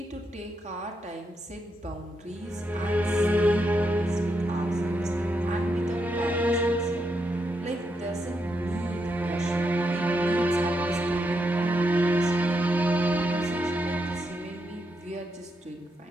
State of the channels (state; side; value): normal; both; correlation 0.82